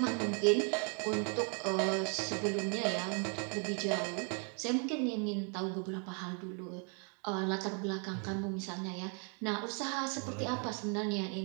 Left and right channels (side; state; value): left; quieter; 39.2 dB